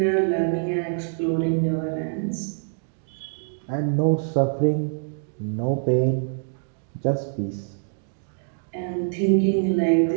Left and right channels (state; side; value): silent; left; digital silence